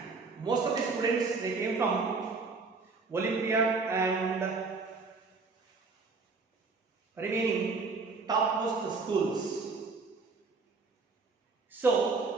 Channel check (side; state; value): left; quieter; 4.2 dB